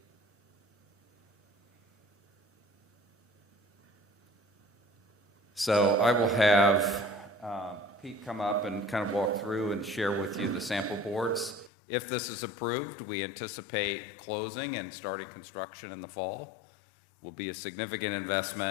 So I will have Pete come up and kind of walk through and share with you the sample boards. If this is approved, we anticipate closing and starting construction in the fall. Will be a significant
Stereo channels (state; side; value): drops out; right; at 11.7 s